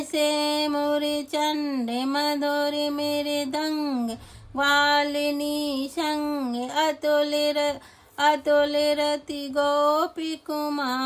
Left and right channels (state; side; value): identical; both; correlation 1.00